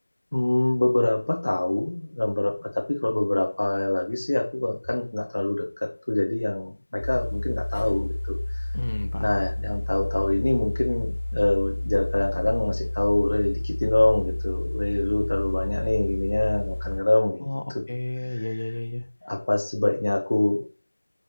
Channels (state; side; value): inverted; both; correlation -1.00